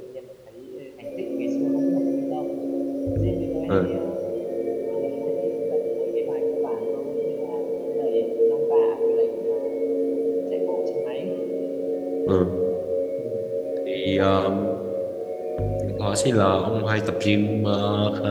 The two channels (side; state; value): both; identical; correlation 1.00